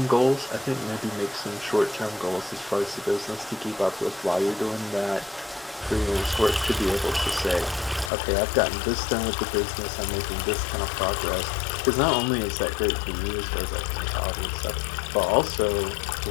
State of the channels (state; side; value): drops out; right; at 8.1 s